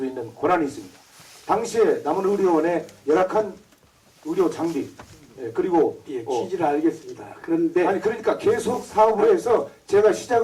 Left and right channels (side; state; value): both; identical; correlation 1.00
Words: 있는 권한이 있습니다. 당시에 남원의료원의 열악한 의료 장비 그리고 예, 취지를 알겠습니다. 그런데 아니 그러니까 계속 사업을 해서 제가